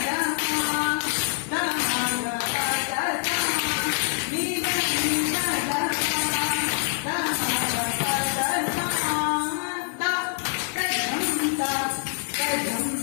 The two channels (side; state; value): right; silent; 61 dB below the other